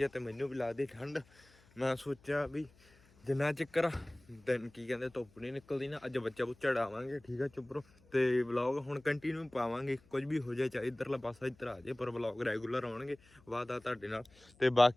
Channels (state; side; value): noise; left; hum, 29 dB below the sound